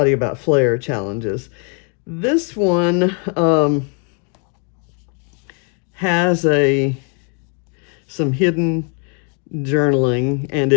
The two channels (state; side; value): quieter; right; 38.6 dB